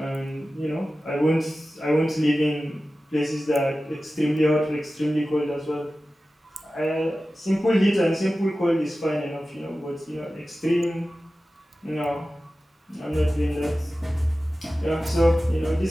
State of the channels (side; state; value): both; normal; correlation 0.95